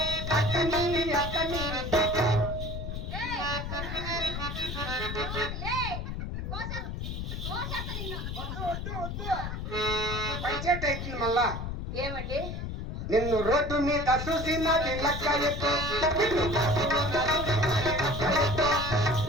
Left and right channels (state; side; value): noise; left; rumble, 5 dB below the sound